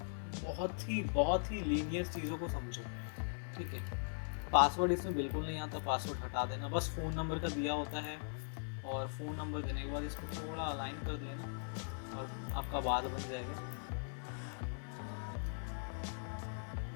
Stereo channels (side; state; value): right; silent; 51 dB below the other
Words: बहुत ही लीनियर चीज़ों को समझो, ठीक है। पासवर्ड इसमें बिल्कुल नहीं आता, पासवर्ड हटा देना, बस फ़ोन नंबर का दिया होता है, और फ़ोन नंबर देने के बाद इसको थोड़ा अलाइन कर देना और आपका बात बन जाएगा।